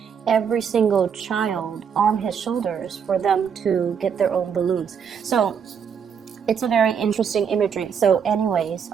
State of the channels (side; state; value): left; quieter; 7.1 dB